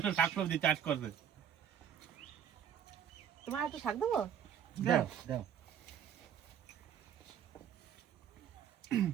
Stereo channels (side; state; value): left; quieter; 8.8 dB